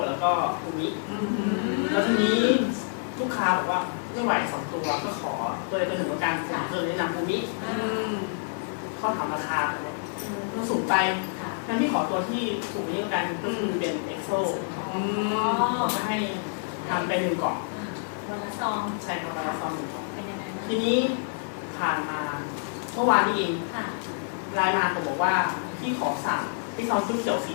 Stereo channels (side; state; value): right; silent; digital silence